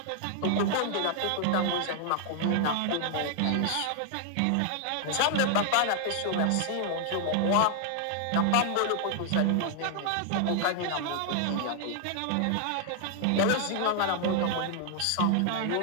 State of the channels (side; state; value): both; different; correlation 0.00